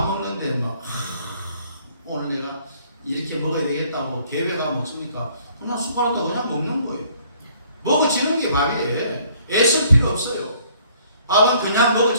먹는데 오늘 내가 이렇게 먹어야 되겠다고 계획하면 먹습니까? 그냥 숟가락도 그냥 먹는 거예요. 먹어지는 게 밥이에요. 애쓸 필요 없어요. 밥은 그냥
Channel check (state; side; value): inverted; both; correlation -0.61